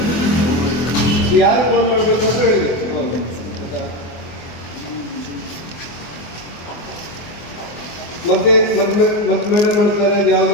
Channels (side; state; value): right; late; 24 ms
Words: ಯಾರು ಫೋನ್ ಮಾಡಬೇಕಂತ ಹೇಳಿ ಮತ್ತೆ ಮೇಡಮ್ ಮಾಡ್ತಾರೆ ಅದು ಯಾವುದೋ